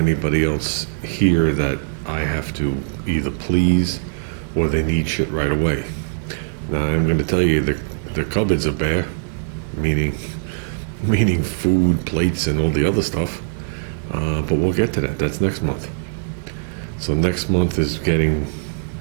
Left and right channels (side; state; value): left; silent; 65 dB below the other